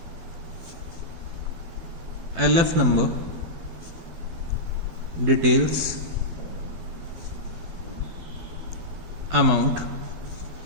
LF number, details, amount.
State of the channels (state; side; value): late; left; 12 ms